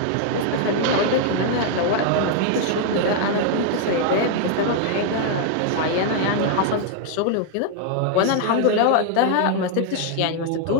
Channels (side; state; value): both; different; correlation 0.00